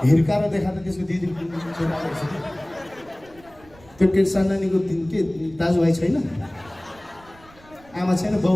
हिर्काएर देखा त त्यसको दिदी त्यो के सन्नानीको के दाजुभाइ छैन, आमा छैन,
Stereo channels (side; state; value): right; noise; rumble, 26 dB below the sound